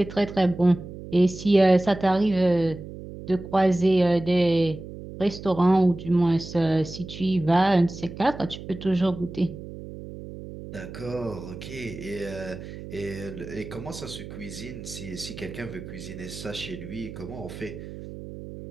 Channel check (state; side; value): noise; right; hum, 12 dB below the sound